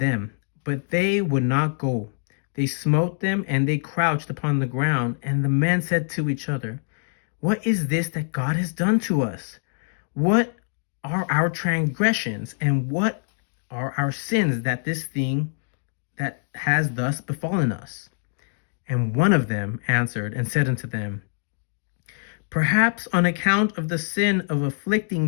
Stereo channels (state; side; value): silent; right; digital silence